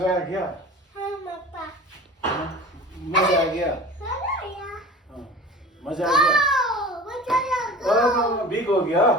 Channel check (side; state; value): both; normal; correlation 0.39